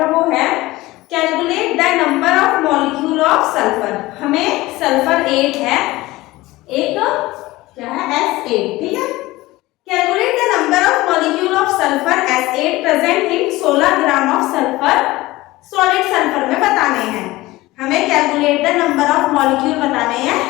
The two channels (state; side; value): quieter; right; 19.0 dB